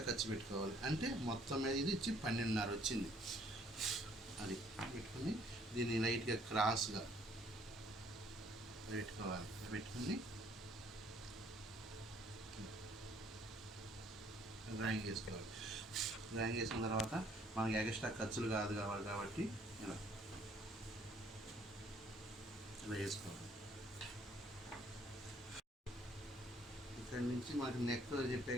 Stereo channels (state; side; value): normal; both; correlation 0.62